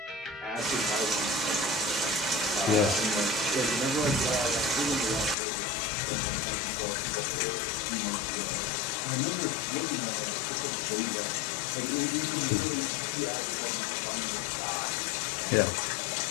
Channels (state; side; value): drops out; right; at 5.4 s